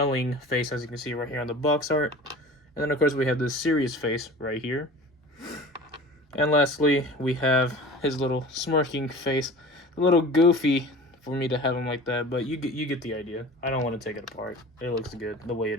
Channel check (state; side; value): normal; both; correlation 0.39